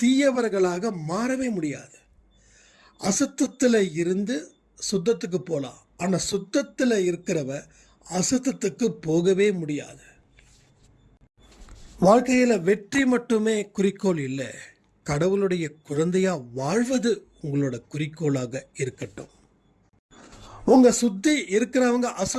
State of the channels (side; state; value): both; identical; correlation 1.00